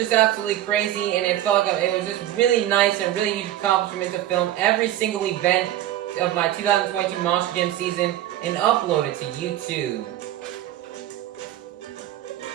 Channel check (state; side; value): quieter; left; 13.0 dB